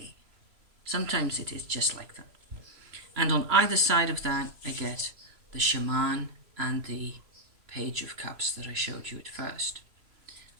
Sometimes it is just like that. And on either side of that, I get the Shaman and the Page of Cups that I showed you at first.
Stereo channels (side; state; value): left; late; 3.0 ms